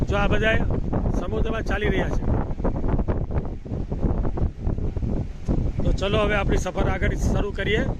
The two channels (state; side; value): identical; both; correlation 1.00